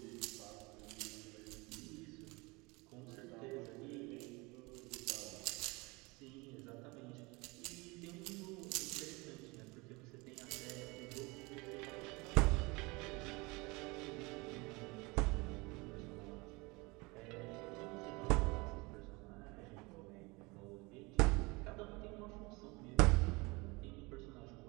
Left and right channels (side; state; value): left; quieter; 25.5 dB